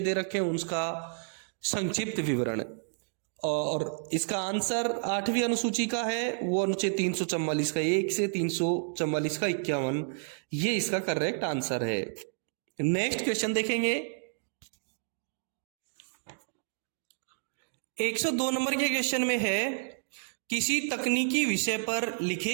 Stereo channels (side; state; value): left; silent; digital silence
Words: दे रखे हैं उसका संक्षिप्त विवरण, और इसका आंसर 8वीं अनुसूची का है वो अनुच्छेद 344 का 1 से 344 का 51, ये इसका करेक्ट आंसर है। नेक्स्ट क्वेश्चन देखेंगे। 102 नंबर के क्वेश्चन में है किसी तकनीकी विषय पर